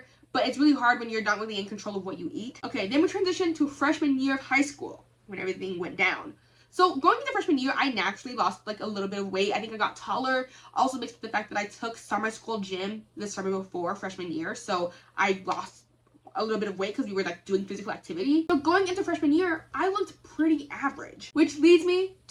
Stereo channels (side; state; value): both; identical; correlation 1.00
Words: but it's really hard when you're not really in control of what you eat. Okay, then we transitioned to freshman year of high school, when everything went down. So going into freshman year, I naturally lost like a little bit of weight. I think I got taller. Also mixed with the fact that I took summer school gym the summer before freshman year. So I lost a little bit of weight because we were like doing physical activity. So going into freshman year, I looked pretty average, which leads me